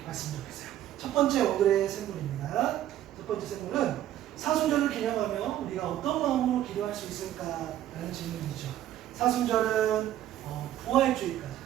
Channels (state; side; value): quieter; left; 12.4 dB